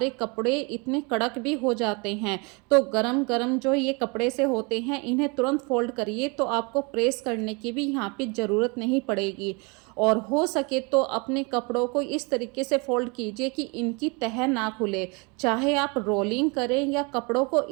कपड़े इतने कड़क भी हो जाते हैं। तो गरम गरम जो ये कपड़े से होते हैं, इन्हें तुरंत फोल्ड करिए, तो आपको प्रेस करने की भी यहाँ पे ज़रूरत नहीं पड़ेगी। और हो सके तो अपने कपड़ों को इस तरीके से फोल्ड कीजिए कि इनकी तह ना खुले, चाहे आप रोलिंग करें या कपड़ों को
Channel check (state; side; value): quieter; left; 30.2 dB